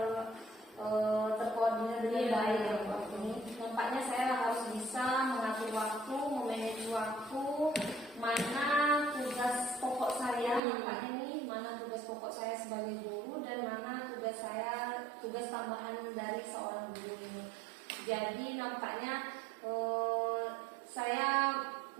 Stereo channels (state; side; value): drops out; left; at 10.6 s